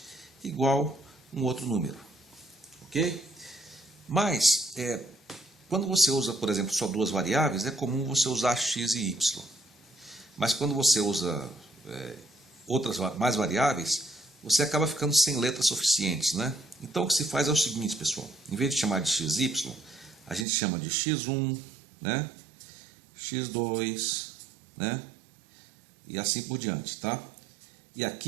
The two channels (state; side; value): drops out; left; at 20.5 s